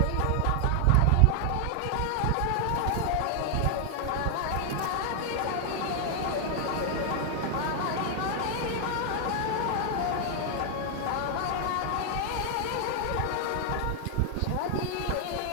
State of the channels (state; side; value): different; both; correlation 0.00